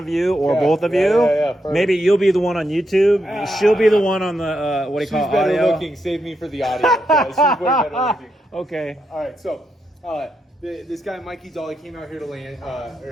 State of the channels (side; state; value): both; normal; correlation 0.83